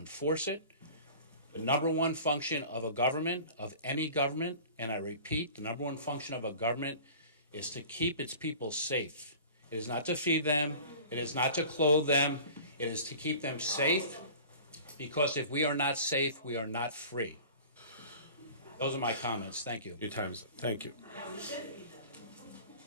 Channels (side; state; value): both; inverted; correlation -0.42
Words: it. The number one function of a government, of any government, and I repeat, the number one function of a government is to keep its people safe. It is not to feed them. It is not to clothe them. It is to keep them safe, because if we are not safe, we are not free. Those are my comments. Thank you. Your time's up. Thank you.